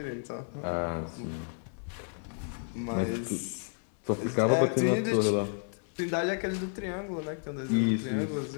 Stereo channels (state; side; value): silent; right; 56 dB below the other